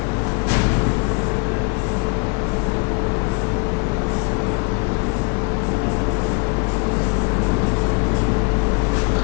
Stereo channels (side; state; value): right; quieter; 34.5 dB